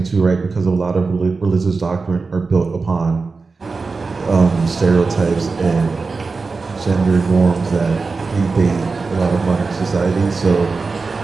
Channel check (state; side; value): quieter; left; 4.2 dB